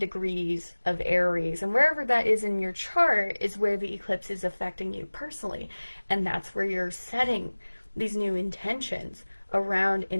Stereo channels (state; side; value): inverted; both; correlation -1.00